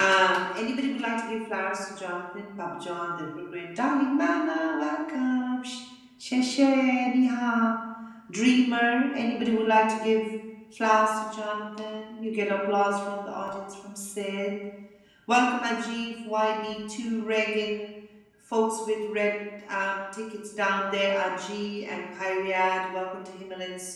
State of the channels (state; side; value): identical; both; correlation 1.00